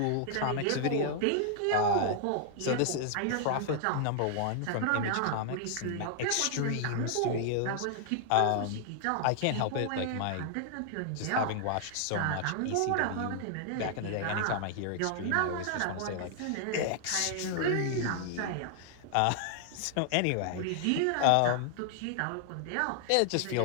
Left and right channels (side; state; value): both; different; correlation -0.01